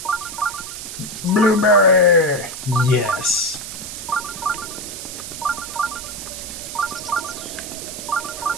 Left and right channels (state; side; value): noise; right; hiss, 9 dB below the sound